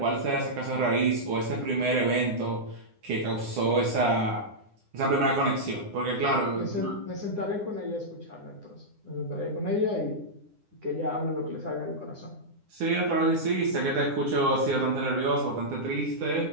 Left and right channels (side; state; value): left; late; 9.9 ms